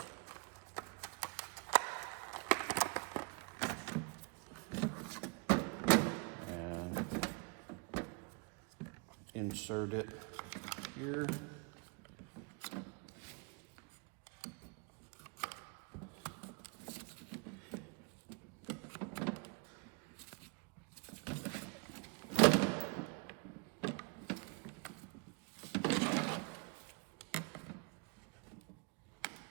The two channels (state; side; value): quieter; left; 32.4 dB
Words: And insert it here.